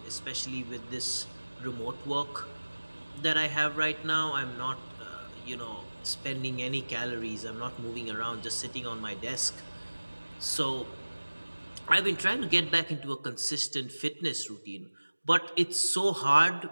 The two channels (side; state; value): both; inverted; correlation -1.00